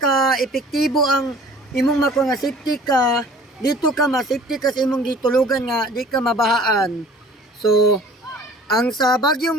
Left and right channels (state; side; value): normal; both; correlation 0.49